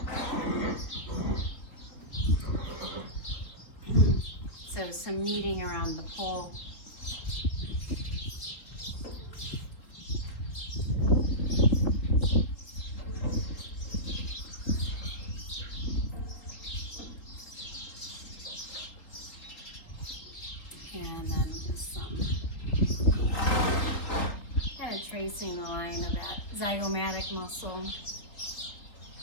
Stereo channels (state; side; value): late; right; 3.9 ms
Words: So some kneading around the pole. And then just some kind of tracing the line of that zygomatic muscle.